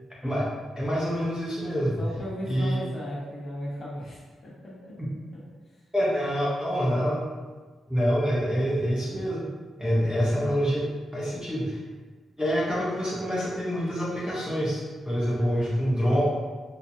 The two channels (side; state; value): both; normal; correlation 0.91